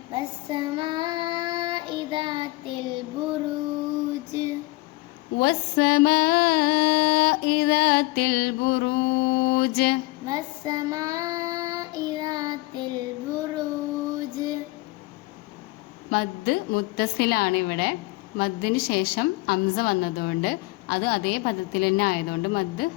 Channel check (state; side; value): quieter; right; 22.4 dB